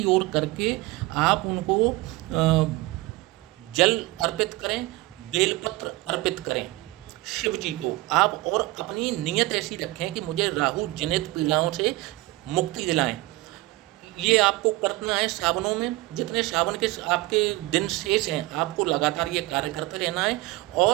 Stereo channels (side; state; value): left; quieter; 20.3 dB